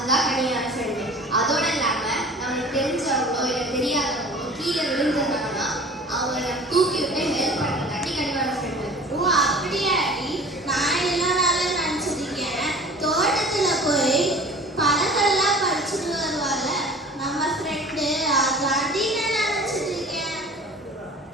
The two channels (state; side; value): normal; both; correlation 0.43